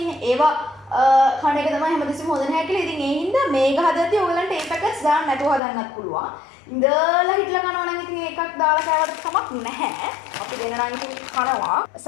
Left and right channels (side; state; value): right; drops out; at 5.6 s